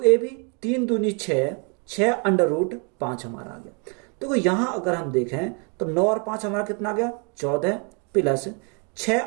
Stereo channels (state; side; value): quieter; left; 36.3 dB